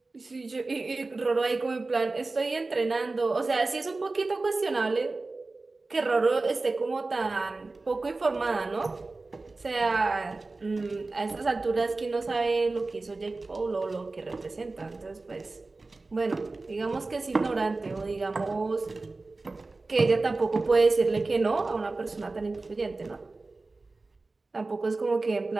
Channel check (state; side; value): quieter; left; 3.5 dB